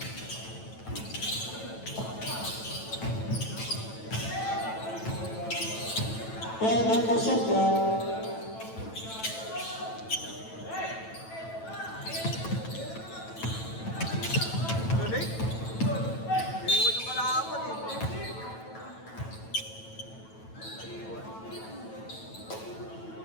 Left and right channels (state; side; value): late; right; 9.1 ms